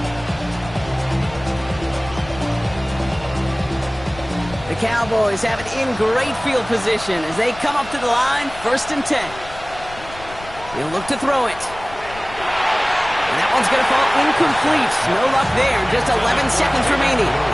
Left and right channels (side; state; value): left; noise; rumble, 17 dB below the sound